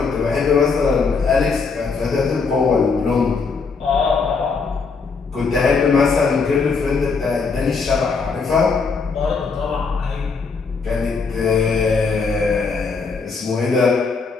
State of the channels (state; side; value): quieter; right; 4.8 dB